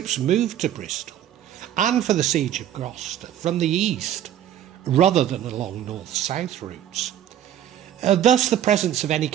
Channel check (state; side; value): quieter; left; 10.9 dB